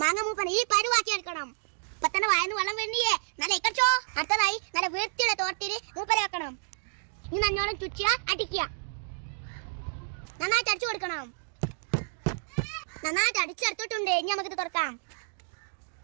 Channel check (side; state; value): left; silent; digital silence